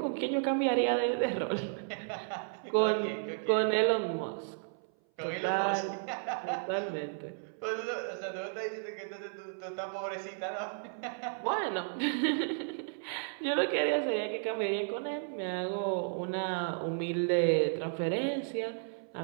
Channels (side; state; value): left; silent; 56 dB below the other